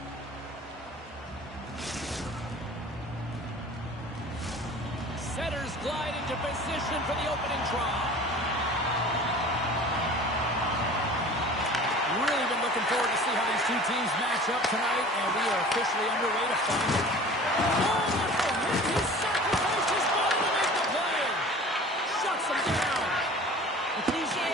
Setters glide into position for the opening draw. Really been looking forward to see how these two teams match up tonight, and we are officially underway to find it. Oh, what a hit! He sacrificed his body to make the play! Shuts him down! The cliche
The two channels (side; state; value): both; normal; correlation 0.43